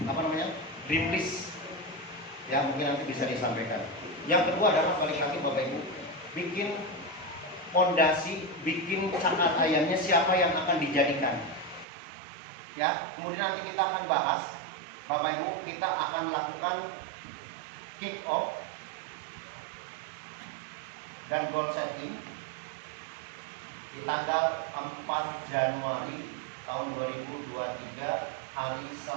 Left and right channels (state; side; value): drops out; left; at 11.9 s